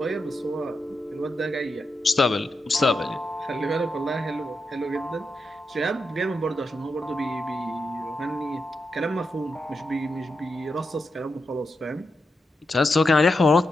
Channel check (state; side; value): normal; both; correlation 0.87